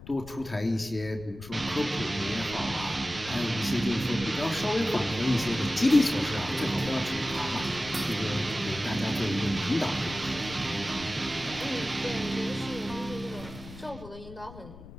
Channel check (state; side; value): noise; left; rumble, 15 dB below the sound